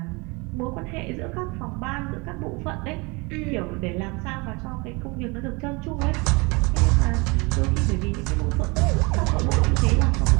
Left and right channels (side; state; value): left; quieter; 27.4 dB